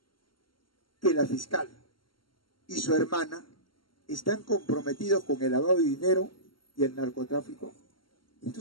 que la fiscal y su hermana están comprometidos con el lavado de dinero y el narcotráfico?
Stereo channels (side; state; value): right; late; 0.73 ms